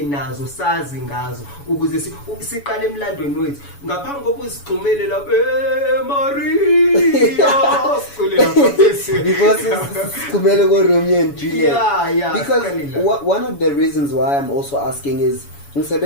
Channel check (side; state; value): right; late; 7.1 ms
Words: nazo sazi ngazo ukuze siqale emlandweni wethu ngaphambi kokusigxumele lapha Maria sicule lapha because sigxumele ko Romeo and Juliet. Yeah, because one of the reasons why I'm also asking is